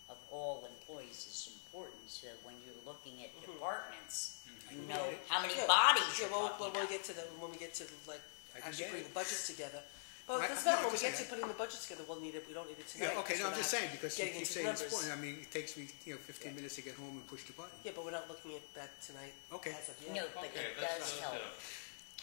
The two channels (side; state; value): right; silent; digital silence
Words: of all employees is important. So when you're looking at departments, you know how many bodies yeah, you're well, talking when we about. get to when we get to like actually get putting it. the budgets together. Well, I- that's not no, when we I'm get just to putting the budgets together. We'll need it. We don't need it tonight. Yeah, okay, because so I'm we're just not saying, because getting you into say the it's numbers. important. I mean, it takes me 15 minutes to get home and push the button. Yeah, but we're not looking at that tonight. Okay. As of yet. No. Okay, But let's go that'll